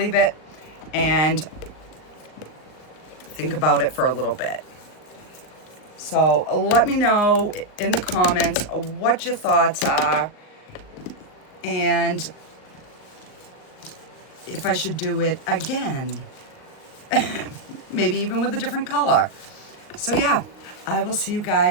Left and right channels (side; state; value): right; late; 39 ms